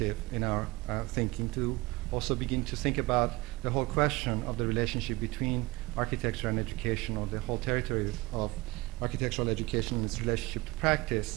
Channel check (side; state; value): left; quieter; 21.8 dB